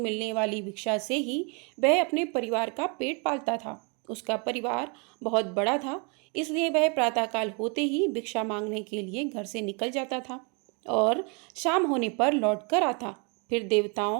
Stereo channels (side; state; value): left; quieter; 34.2 dB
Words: वाली भिक्षा से ही वह अपने परिवार का पेट पालता था। उसका परिवार बहुत बड़ा था, इसलिए वह प्रातःकाल होते ही भिक्षा मांगने के लिए घर से निकल जाता था और शाम होने पर लौट कर आता। फिर